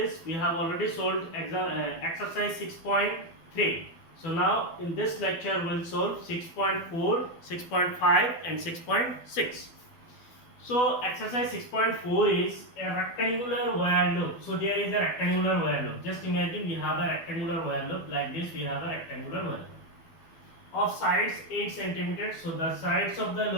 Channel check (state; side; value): late; right; 12 ms